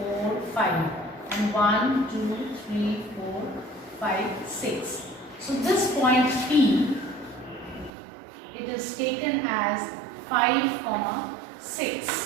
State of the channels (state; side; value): drops out; left; at 7.9 s